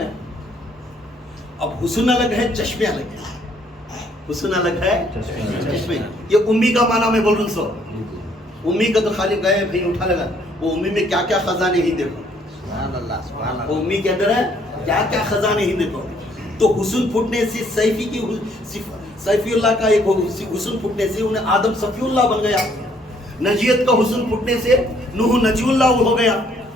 اب حسن الگ ہے, چشمے الگ ہے. حسن الگ ہے, چشمے. یہ امی کا معنی میں بول رہا ہوں. سو امی کا تو خالی گئے بھائی اٹھا لگا, وہ امی میں کیا کیا خزانے ہی دیکھو. سبحان اللہ سبحان وہ اللہ. امی کے اندر ہے کیا کیا خزانے ہی دیکھو. تو حسن پھٹنے سے سیفی اللہ کا ایک حسن پھٹنے سے انہیں آدم صفی اللہ بن گیا. نجیت کا حسن پھٹنے سے نوح نجی اللہ ہو گیا.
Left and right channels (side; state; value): both; normal; correlation 0.65